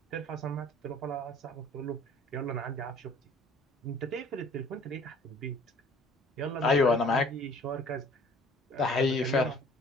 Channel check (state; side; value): normal; both; correlation 0.52